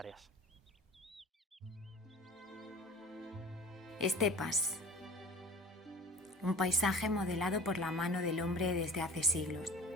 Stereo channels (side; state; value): both; normal; correlation 0.41